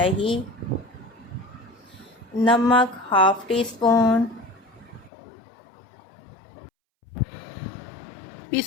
नमक हाफ़ टी स्पून,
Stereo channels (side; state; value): right; drops out; at 5.1 s